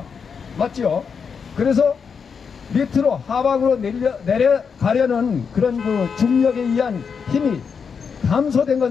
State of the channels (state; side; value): quieter; right; 6.2 dB